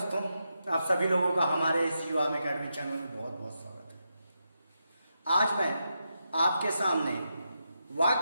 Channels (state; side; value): inverted; both; correlation -0.85